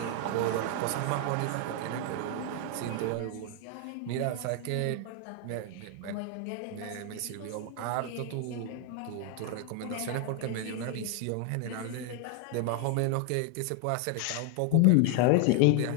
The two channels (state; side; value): different; both; correlation 0.01